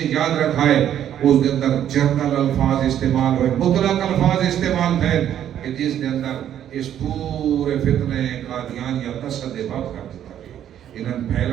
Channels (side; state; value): left; quieter; 10.5 dB